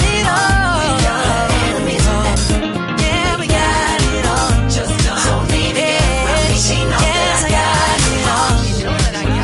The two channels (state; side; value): identical; both; correlation 1.00